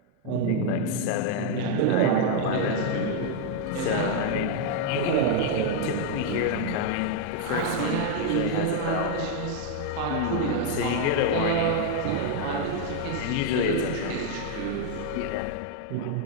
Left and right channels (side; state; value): both; different; correlation 0.00